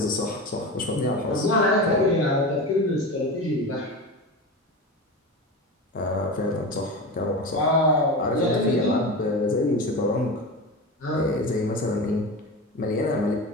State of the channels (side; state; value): both; normal; correlation 0.26